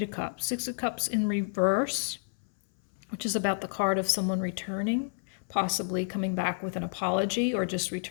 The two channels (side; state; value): right; silent; 58 dB below the other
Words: of Cups. 6 of Cups in reverse, which is about the card of someone returning, possibly coming back with an apology or just